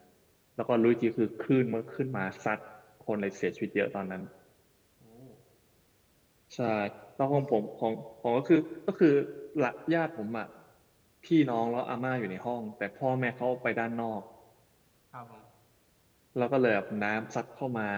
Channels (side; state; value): both; identical; correlation 1.00